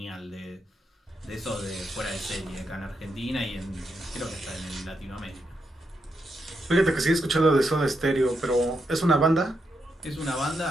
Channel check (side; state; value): both; normal; correlation 0.83